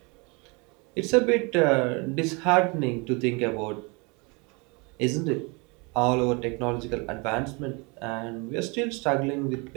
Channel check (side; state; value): left; quieter; 29.7 dB